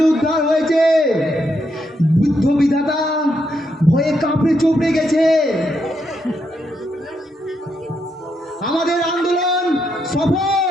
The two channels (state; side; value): normal; both; correlation 0.80